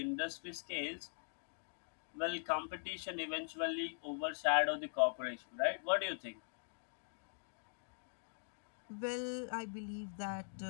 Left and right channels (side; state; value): right; silent; digital silence